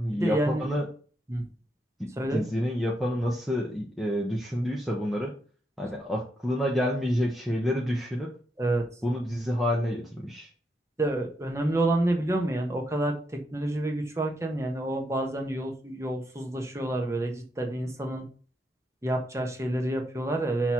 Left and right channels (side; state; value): both; normal; correlation 0.80